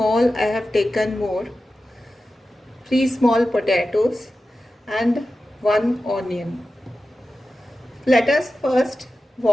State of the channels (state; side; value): normal; both; correlation 0.93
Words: I have taken more. 3 small potatoes and 1 onion. Let us first